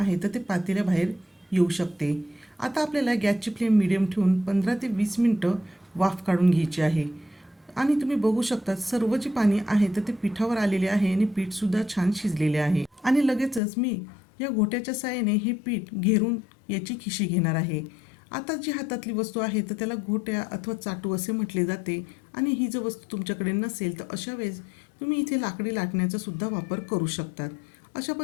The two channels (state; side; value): drops out; right; at 13.6 s